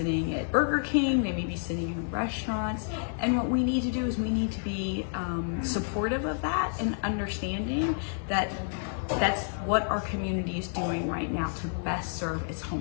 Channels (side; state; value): right; silent; 58 dB below the other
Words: at Burger King, they may be sitting in restaurants. And what we need to do is we need to be supportive of that and understanding that that's what our community is doing right now to best serve its